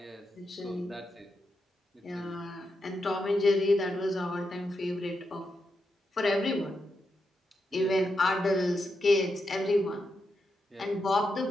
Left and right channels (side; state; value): both; normal; correlation 0.85